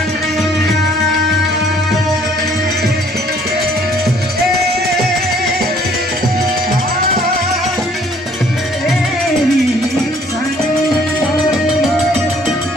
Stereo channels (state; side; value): normal; both; correlation 0.60